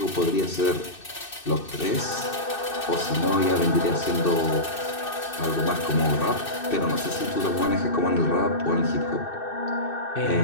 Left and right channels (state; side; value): late; right; 2.6 ms